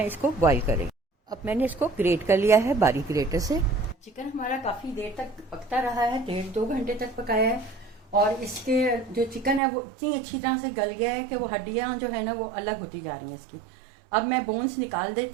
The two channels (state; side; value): drops out; left; at 9.6 s